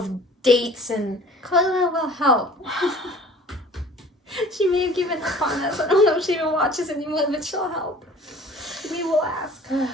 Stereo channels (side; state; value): both; normal; correlation 0.48